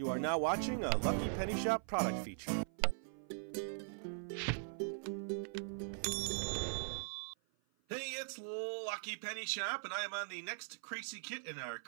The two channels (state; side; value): silent; left; 50 dB below the other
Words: are now watching a Lucky Penny Shop product feature. Hey, it's Lucky Penny Shop, and I am on the next Kracie Kit in our